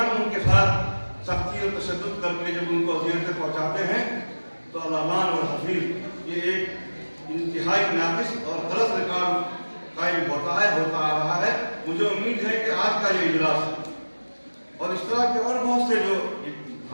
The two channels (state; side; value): inverted; both; correlation -1.00